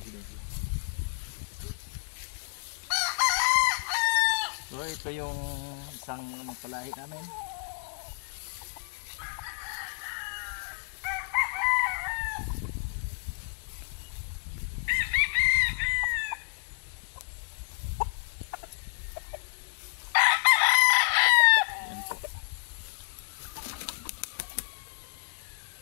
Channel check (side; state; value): right; silent; 58 dB below the other